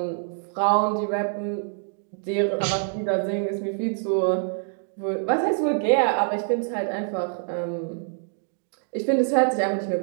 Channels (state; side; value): silent; left; digital silence